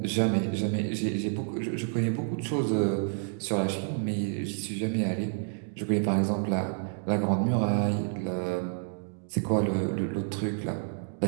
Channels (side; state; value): left; silent; 58 dB below the other